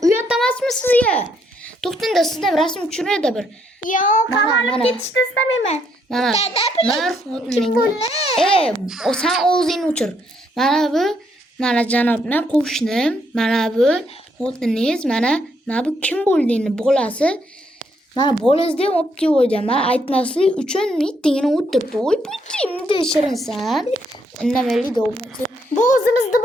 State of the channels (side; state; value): both; normal; correlation 0.73